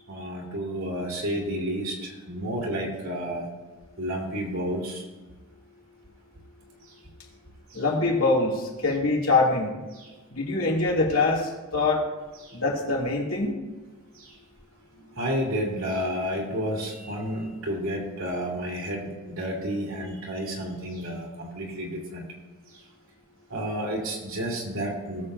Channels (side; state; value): both; normal; correlation 0.14